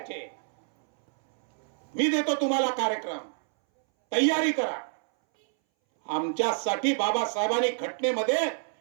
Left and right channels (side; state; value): left; silent; 60 dB below the other